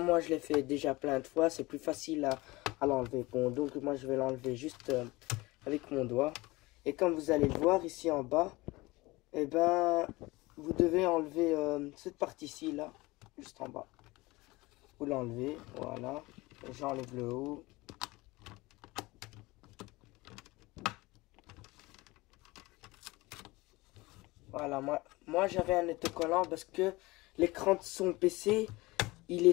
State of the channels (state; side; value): quieter; right; 21.6 dB